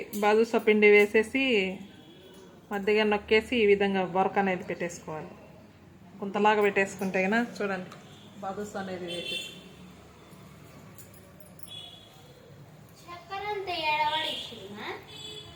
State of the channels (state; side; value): identical; both; correlation 1.00